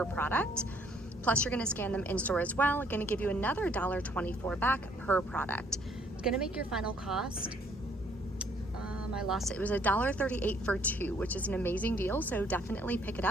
product. Plus you're gonna scan them in store as well, gonna give you another $1.24 back per product. It's gonna make your final cost, I lost it. It was $1.38 for 2, which is an amazing deal, so definitely pick it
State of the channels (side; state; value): both; normal; correlation 0.64